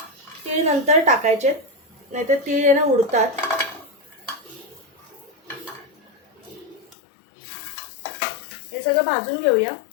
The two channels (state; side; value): drops out; right; at 7.0 s